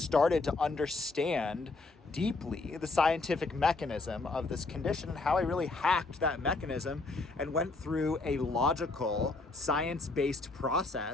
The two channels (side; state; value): right; quieter; 3.5 dB